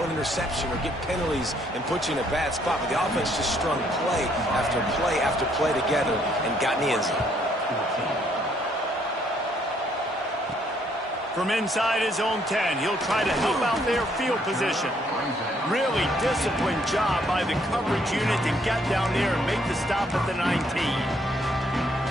an interception or get penalties and put you in a bad spot. But the offense just strung play after play after play together and got in the end zone. From inside his own 10, he'll try to help out their field position. Really disciplined job by the coverage unit to get down there and make the stop at the 19.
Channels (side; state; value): both; normal; correlation 0.68